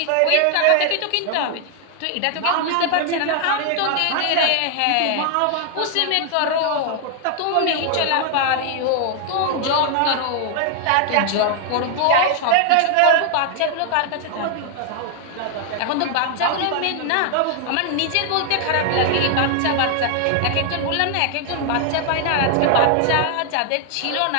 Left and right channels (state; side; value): different; both; correlation 0.00